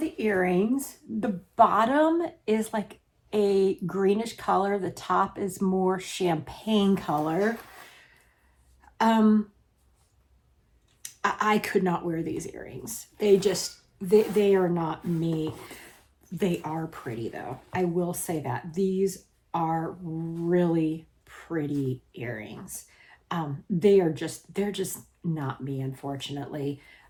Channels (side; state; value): both; identical; correlation 1.00